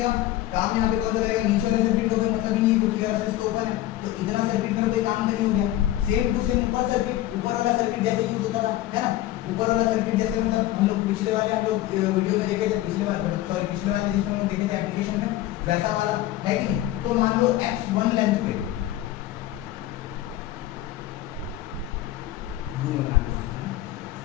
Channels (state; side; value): quieter; right; 14.5 dB